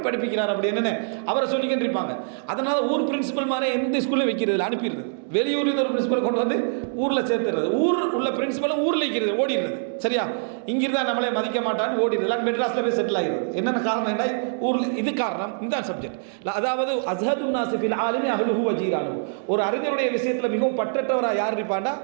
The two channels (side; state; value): left; silent; digital silence